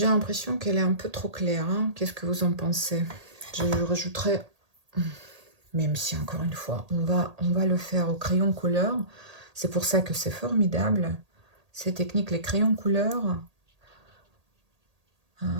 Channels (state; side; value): late; left; 1.8 ms